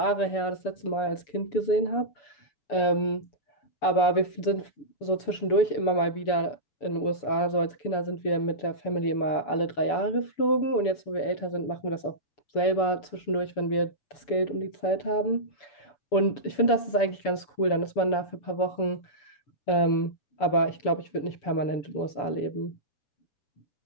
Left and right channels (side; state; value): right; late; 6.9 ms